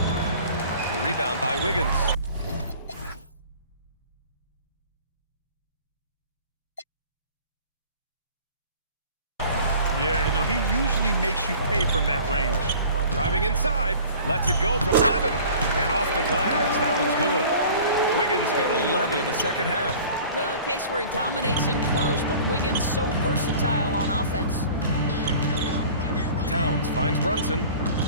The rebound by Wiggins. Yeah, you know, he usually makes you pay from that range. Driving inside. Lets it go from 11. And off the glass. That one's good. Wiggins got 11 in the 2nd half. Well, a case where he dominates in close, but Wiggins so versatile on offense. Towns finds Brunson.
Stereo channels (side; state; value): both; inverted; correlation -0.45